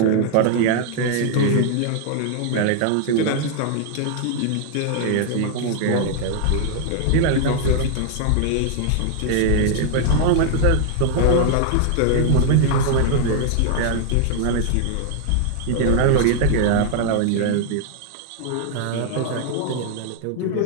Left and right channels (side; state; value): both; different; correlation 0.00